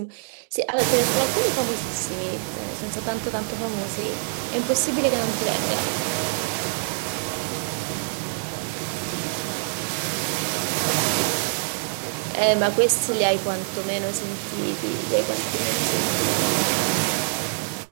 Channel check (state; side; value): silent; left; digital silence